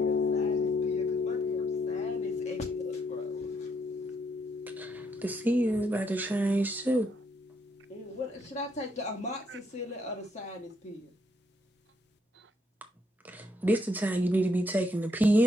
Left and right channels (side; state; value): both; normal; correlation 0.73